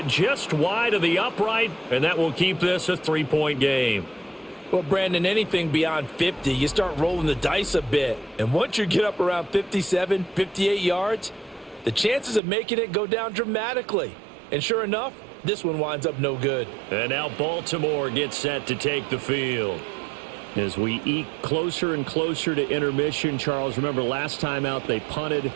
just wide of the upright, and that will keep this a 3-point game. Well, Brandon, anything beyond 50, you start rolling the dice a bit. And once you get up around 57, 58 yards, the chances of making it go down dramatically. And sure enough, this one winds up no good. And now Baltimore gets set to take the field. As we eke closer and closer to intermission, Charles, remember last time out they punted.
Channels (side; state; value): left; drops out; at 12.4 s